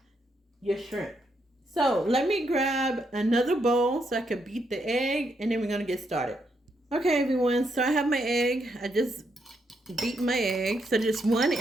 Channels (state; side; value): normal; both; correlation 0.78